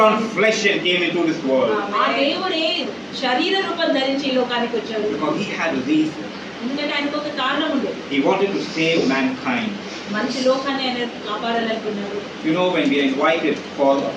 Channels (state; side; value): identical; both; correlation 1.00